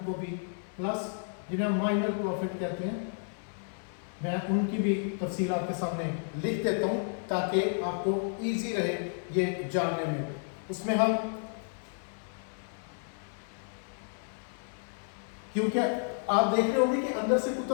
کو بھی پلس جنہیں مائنر پروفٹ کہتے ہیں، میں ان کی بھی تفصیل آپ کے سامنے لکھ دیتا ہوں تاکہ آپ کو ایزی رہے یہ جاننے میں. اس میں ہم، کیونکہ آپ دیکھ رہے ہوں گے کہ اندر سے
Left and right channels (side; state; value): right; silent; 57 dB below the other